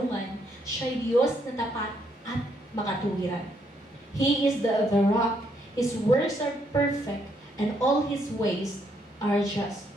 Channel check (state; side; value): normal; both; correlation 0.73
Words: siya'y Diyos na tapat at makatuwiran. He is the rock, His works are perfect, and all His ways are just.